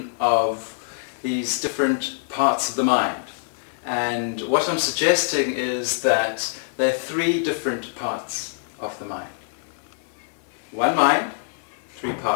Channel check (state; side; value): silent; right; 58 dB below the other